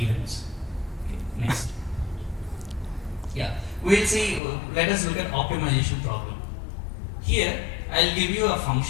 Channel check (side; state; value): right; drops out; at 4.4 s